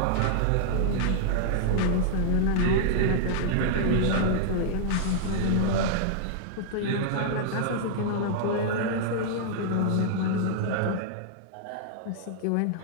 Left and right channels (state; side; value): different; both; correlation -0.01